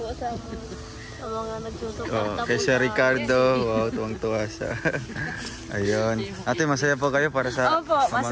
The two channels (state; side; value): identical; both; correlation 1.00